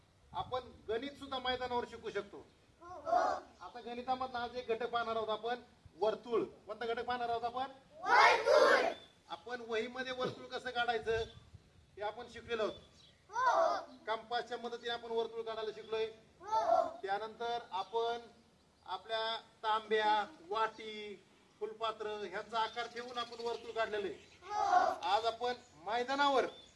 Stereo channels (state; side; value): identical; both; correlation 1.00